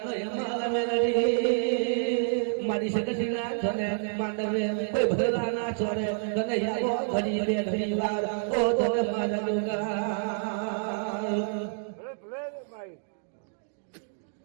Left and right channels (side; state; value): left; silent; digital silence